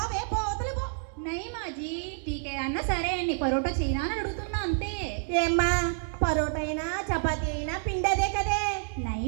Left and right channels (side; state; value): left; silent; digital silence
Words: పోతలు పో. नहीं माँ जी, ठीक है అన్న సరే అండి పరోటా చేయనా అని అడుగుతున్నా అంతే. ఏమ్మా పరోటా అయినా చపాతీ అయినా పిండదే కదే.